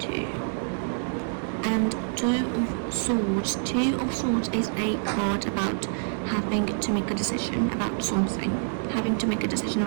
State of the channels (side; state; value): left; silent; digital silence